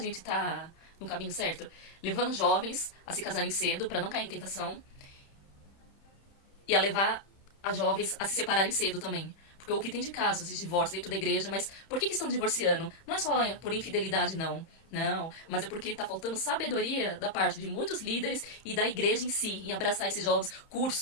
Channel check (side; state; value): right; late; 31 ms